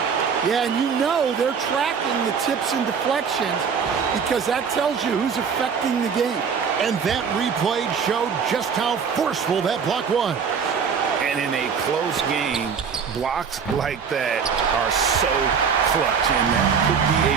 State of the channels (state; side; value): quieter; left; 6.4 dB